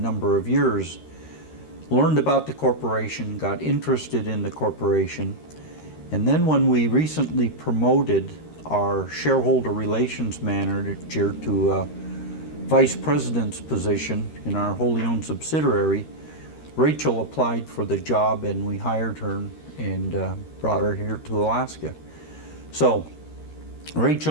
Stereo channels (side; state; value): right; late; 13 ms